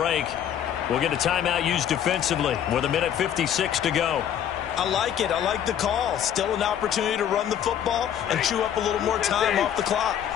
we'll get a timeout used defensively with 1:56 to go. I like it. I like the call. Still an opportunity to run the football and chew up a little more time off the clock.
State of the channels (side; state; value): right; quieter; 9.7 dB